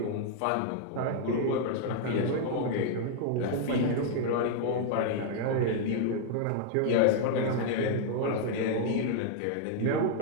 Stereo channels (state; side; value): different; both; correlation 0.00